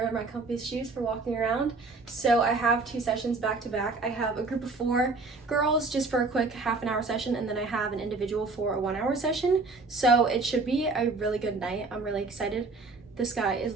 my comfiest shoes for walking around. So I have 2 sessions back to back. I have a group of 4 girls just for a quick half-an-hour session, and then I have an individual for a 1-hour session. So it should be a really good night. I'm really excited. The sky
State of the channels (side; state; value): left; quieter; 3.7 dB